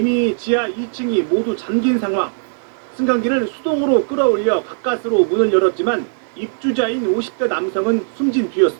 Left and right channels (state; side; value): silent; left; digital silence